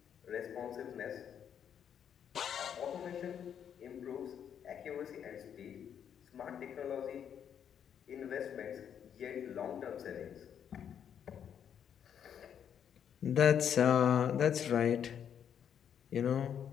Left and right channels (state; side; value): quieter; right; 8.6 dB